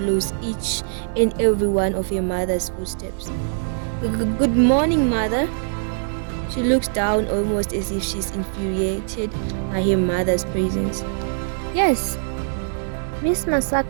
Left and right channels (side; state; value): left; silent; digital silence